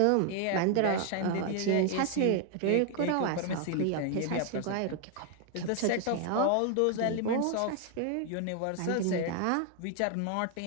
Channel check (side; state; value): both; different; correlation 0.00